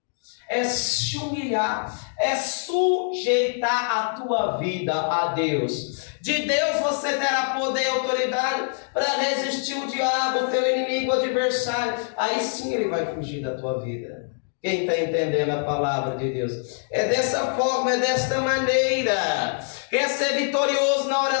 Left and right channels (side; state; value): right; silent; 62 dB below the other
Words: É se humilhar, é sujeitar a tua vida a Deus. De Deus você terá poder e autoridade para resistir o diabo, o teu inimigo, o adversário. Aí sim ele vai fugir da tua vida. Quem está entendendo a palavra de Deus? É dessa forma, é desta maneira. Quer ser vitorioso na